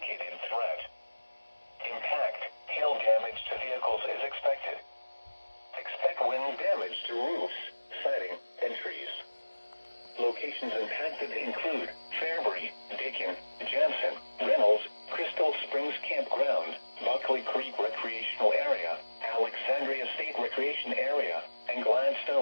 threat. Impact, hail damage to vehicles is expected. Expect wind damage to roofs, siding, and trees. Locations impacted include Fairbury, Dakin, Jansen, Reynolds, Crystal Springs Campground, Buckley Creek Recreational Area, Alexandria State Recreation Area, and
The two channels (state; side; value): inverted; both; correlation -1.00